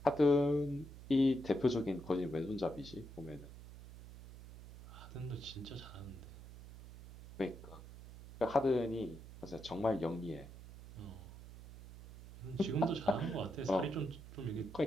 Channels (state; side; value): noise; right; hum, 15 dB below the sound